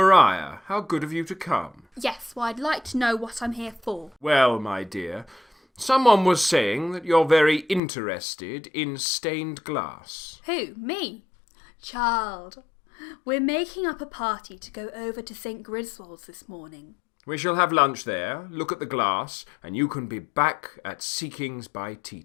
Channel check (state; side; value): drops out; right; at 7.8 s